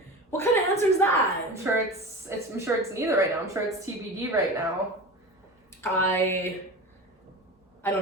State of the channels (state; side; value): normal; both; correlation 0.30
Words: what kind of answer is that? I'm sure it's neither right now. I'm sure it's TBD right now. I